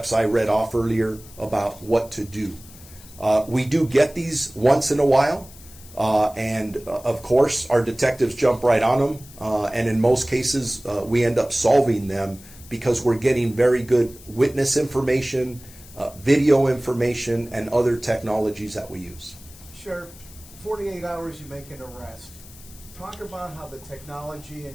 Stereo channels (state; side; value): noise; left; hiss, 20 dB below the sound